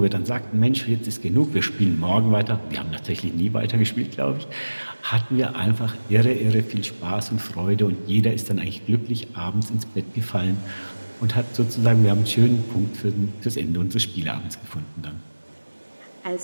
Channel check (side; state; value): both; inverted; correlation -1.00